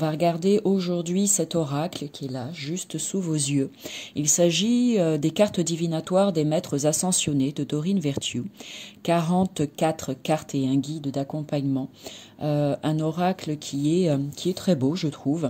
regarder aujourd'hui cet oracle qui est là, juste sous vos yeux. Il s'agit des cartes divinatoires des maîtres ascensionnés de Dorine Virtue. 44 cartes et un guide d'accompagnement. Un oracle qui est très beau, je trouve,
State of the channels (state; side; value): identical; both; correlation 1.00